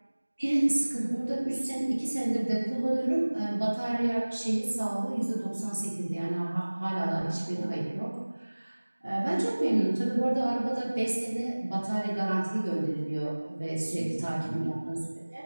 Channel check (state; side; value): inverted; both; correlation -1.00